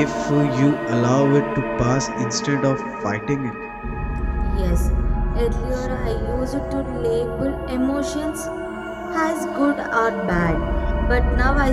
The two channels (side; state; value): both; identical; correlation 1.00